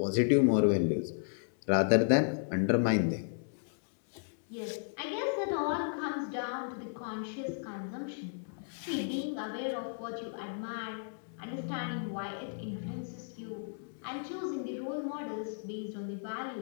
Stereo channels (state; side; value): silent; right; digital silence